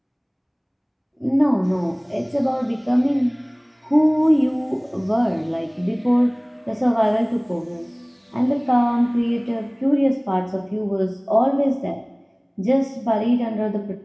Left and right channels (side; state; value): both; identical; correlation 1.00